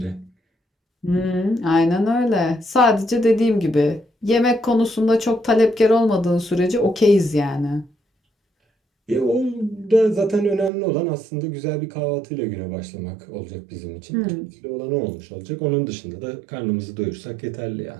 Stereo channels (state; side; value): drops out; left; at 10.7 s